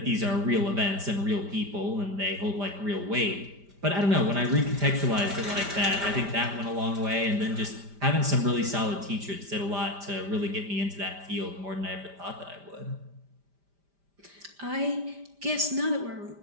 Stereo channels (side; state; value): left; late; 5.0 ms